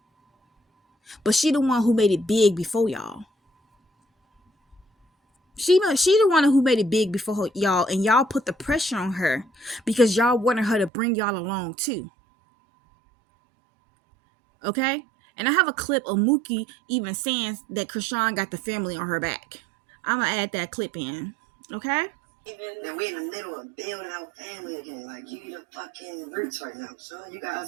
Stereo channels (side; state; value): left; drops out; at 10.9 s